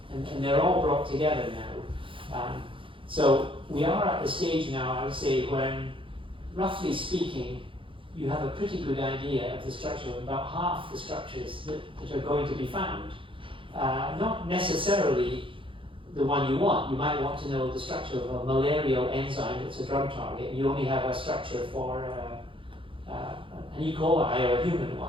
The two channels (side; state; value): left; late; 0.25 ms